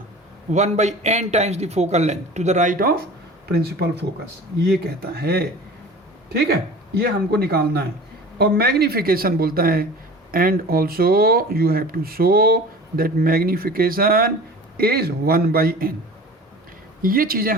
1/n times the focal length to the right of principal focus, ये कहता है, ठीक है? ये हमको निकालना है। और मैग्निफिकेशन बोलता है and also you have to show that magnification is 1/n। ये चीज़ें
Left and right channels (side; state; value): both; normal; correlation 0.39